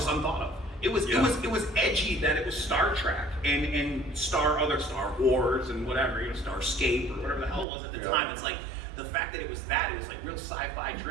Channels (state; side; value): drops out; left; at 7.7 s